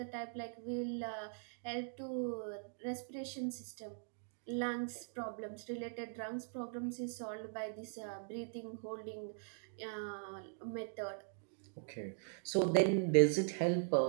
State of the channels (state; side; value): silent; left; digital silence